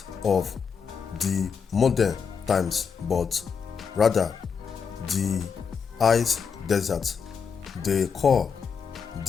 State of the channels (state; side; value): quieter; right; 6.2 dB